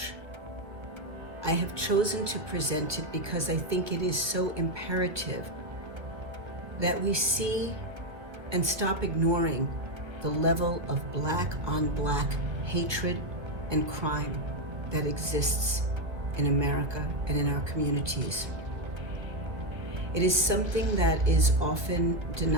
I have chosen to present it because I think it is so imperative that we see and stop ignoring the level of Black on Black hatred and crime that exists in America and in our communities. It is something that is often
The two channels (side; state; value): left; late; 1.4 ms